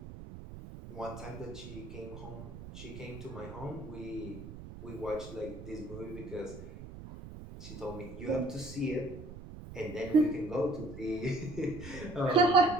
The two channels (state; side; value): noise; right; rumble, 12 dB below the sound